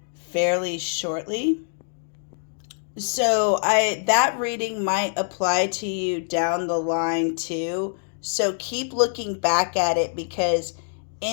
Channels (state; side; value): silent; right; digital silence